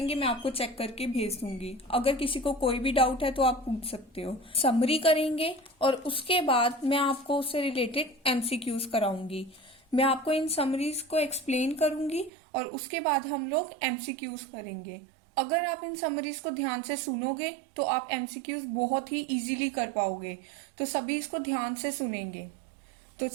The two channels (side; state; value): left; drops out; at 12.3 s